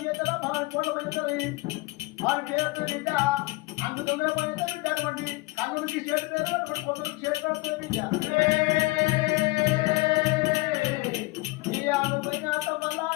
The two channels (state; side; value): quieter; right; 22.2 dB